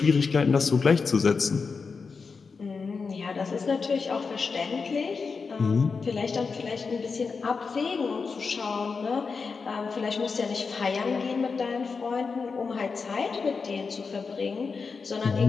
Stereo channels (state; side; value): quieter; right; 4.9 dB